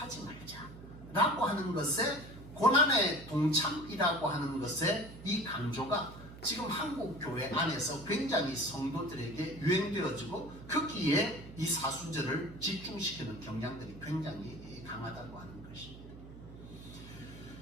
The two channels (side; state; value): right; noise; hum, 15 dB below the sound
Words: 말자 라고 하는 것에 고난의 동참이라고 하는 것에 이 강조가 지금 한국 교회 안에서 굉장히 성도들에게 유행되어지고 거기에 이 사순절을 집중시키는 경향들이 굉장히 강하다고 하는 것입니다.